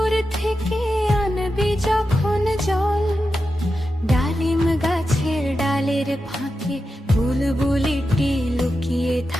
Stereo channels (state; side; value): normal; both; correlation 0.90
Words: থেকে আনবি যখন জল। ডালিম গাছের ডালের ফাঁকে বুলবুলিটি লুকিয়ে